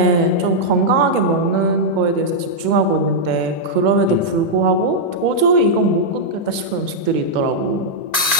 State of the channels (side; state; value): right; late; 2.2 ms